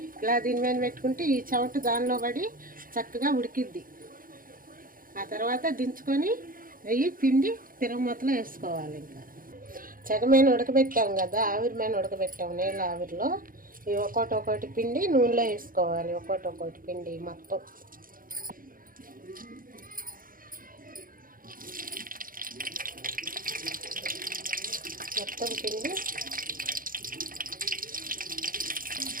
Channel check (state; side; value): late; left; 0.41 ms